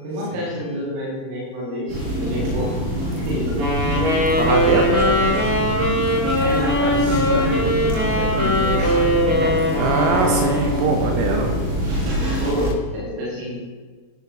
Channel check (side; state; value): left; late; 38 ms